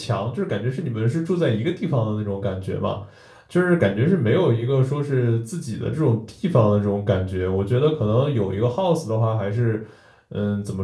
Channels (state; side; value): identical; both; correlation 1.00